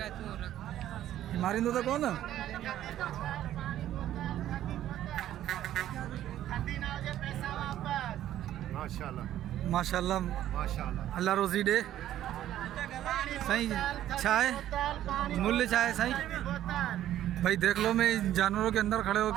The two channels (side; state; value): left; quieter; 12.4 dB